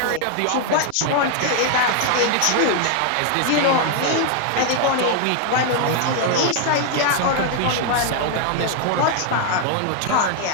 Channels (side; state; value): both; different; correlation 0.00